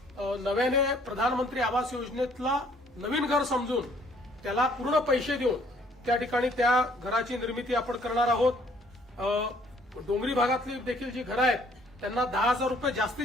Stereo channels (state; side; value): normal; both; correlation 0.62